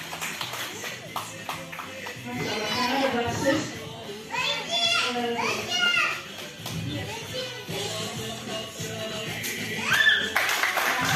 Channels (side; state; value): both; identical; correlation 1.00